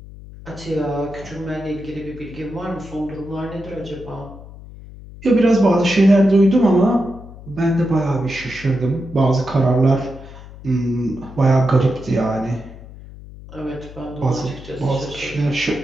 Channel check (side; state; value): left; noise; hum, 16 dB below the sound